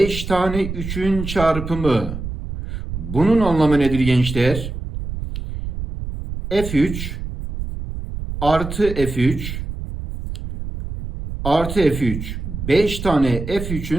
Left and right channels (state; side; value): noise; right; rumble, 7 dB below the sound